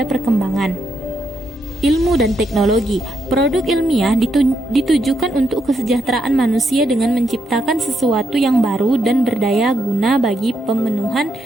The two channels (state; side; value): normal; both; correlation 0.79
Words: perkembangan ilmu dan teknologi. Produk ilmiah ditujukan untuk kesejahteraan manusia dengan menciptakan sesuatu yang baru dan berdaya guna bagi pemenuhan